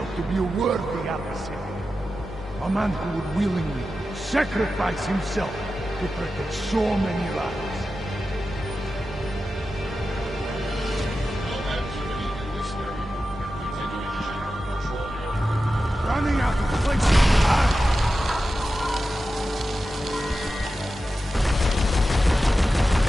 to be a worthy adversary. A man who would willingly sacrifice himself to protect so many lives. Running out of place.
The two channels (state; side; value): normal; both; correlation 0.92